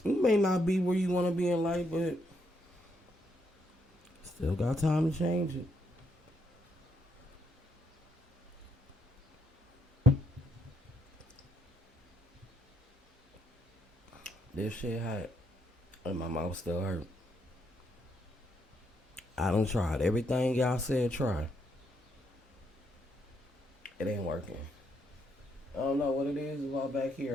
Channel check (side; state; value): both; normal; correlation 0.76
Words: be where you want to be in life, but still got time to change it. This shit hot, and my mouth still hurt. I done tried everything y'all said try. It ain't working. I don't know what it is. It's all back